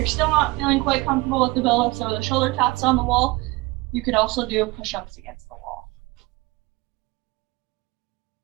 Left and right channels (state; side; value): quieter; left; 22.7 dB